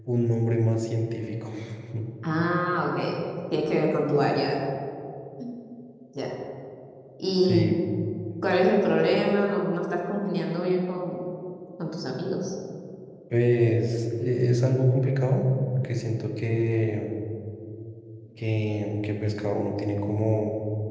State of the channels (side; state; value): both; identical; correlation 1.00